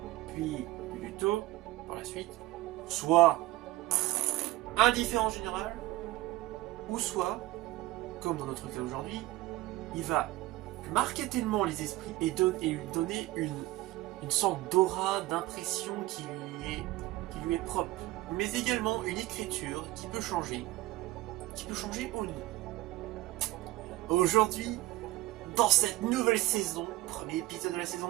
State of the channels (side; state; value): left; quieter; 18.0 dB